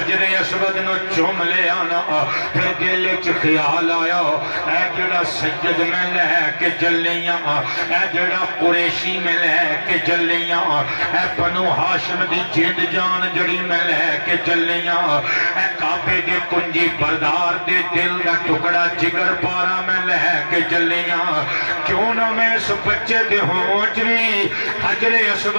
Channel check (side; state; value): both; inverted; correlation -1.00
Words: اسود نو چوم لے آنا پھر دل وچ خیال آیا اے جڑا سید میں لے کے چلیاں اے جڑا قریشی میں لے کے چلیاں اے بنو ہاشم دی جد جان جڑی میں لے کے چلیاں اے کعبے دے کنجی بردار دے دل دا ٹکڑا جگر پارا میں لے کے چلیاں کیوں نہ میں اس بچے دے ہونچ بھی حجر